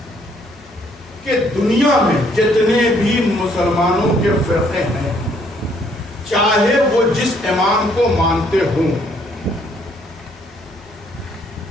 کہ دنیا میں جتنے بھی مسلمانوں کے فرقے ہیں، چاہے وہ جس امام کو مانتے ہوں،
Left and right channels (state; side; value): noise; left; hum, 26 dB below the sound